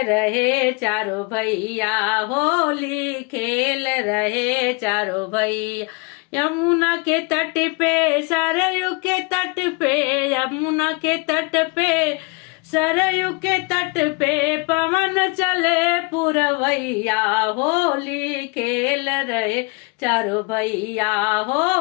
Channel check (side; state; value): right; quieter; 30.4 dB